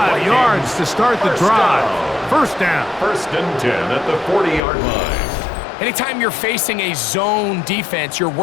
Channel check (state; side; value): drops out; right; at 4.6 s